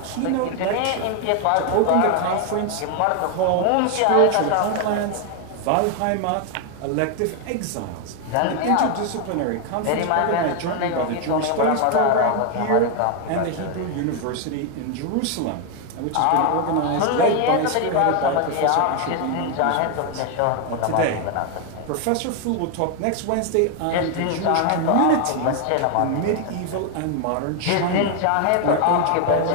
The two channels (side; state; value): both; different; correlation 0.01